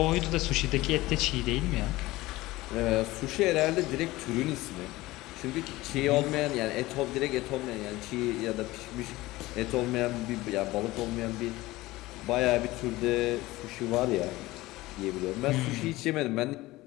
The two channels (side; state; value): right; quieter; 18.9 dB